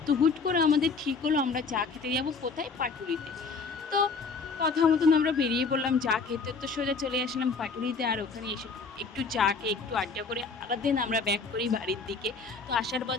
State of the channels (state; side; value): quieter; right; 4.6 dB